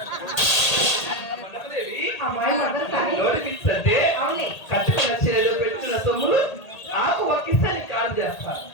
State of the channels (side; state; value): right; late; 1.8 ms